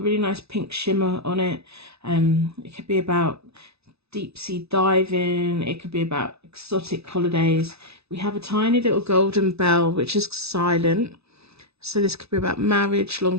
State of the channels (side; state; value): left; late; 0.79 ms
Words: really nice pink shimmer on it. It could be about deep sea diving, it could be about exotic holidays. We have a tiny little golden bell, which is silent. So this could be about marriage,